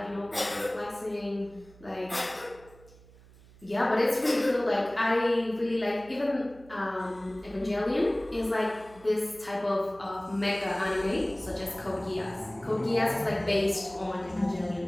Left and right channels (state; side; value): noise; right; hum, 23 dB below the sound